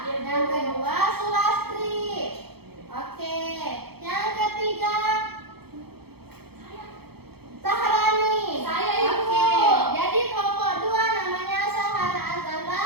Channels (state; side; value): late; left; 0.96 ms